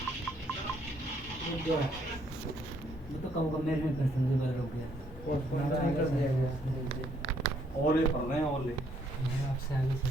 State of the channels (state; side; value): normal; both; correlation 0.69